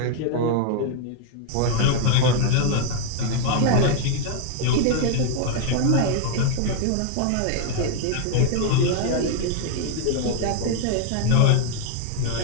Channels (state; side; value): different; both; correlation 0.00